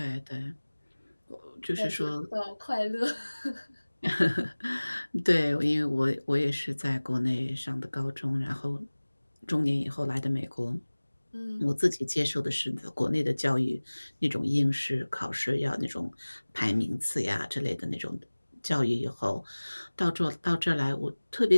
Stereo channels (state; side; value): inverted; both; correlation -1.00